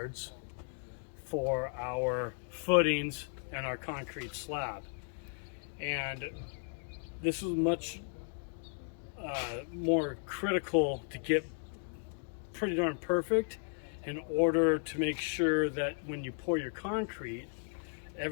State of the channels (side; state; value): right; silent; 54 dB below the other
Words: for our footings and our concrete slab. And this is much more critical to get pretty darn perfect in order to make sure that when you pour your concrete,